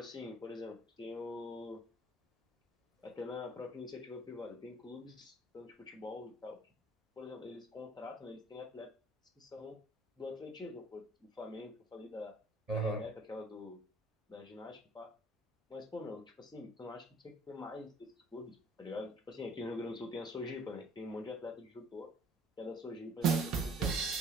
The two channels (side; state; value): both; normal; correlation 0.57